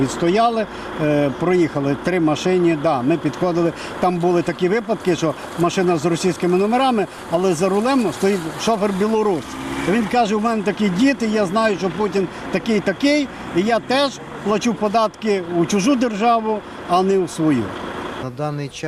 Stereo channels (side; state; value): both; identical; correlation 1.00